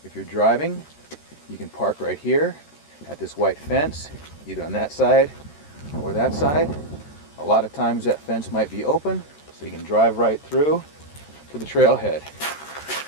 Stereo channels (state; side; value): late; right; 13 ms